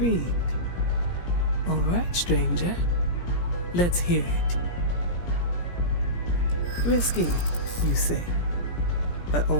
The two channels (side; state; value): right; late; 17 ms